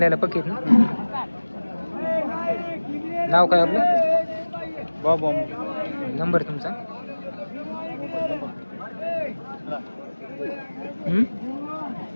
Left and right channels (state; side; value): inverted; both; correlation -1.00